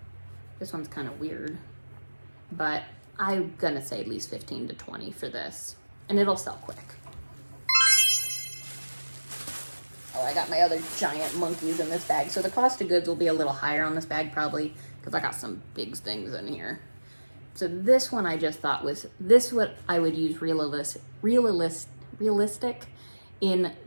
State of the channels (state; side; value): inverted; both; correlation -1.00